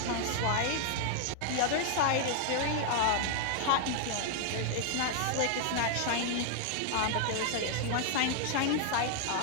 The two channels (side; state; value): both; different; correlation 0.00